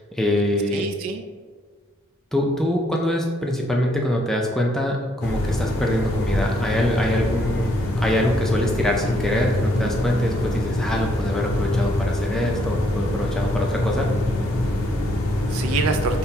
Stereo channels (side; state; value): both; normal; correlation 0.71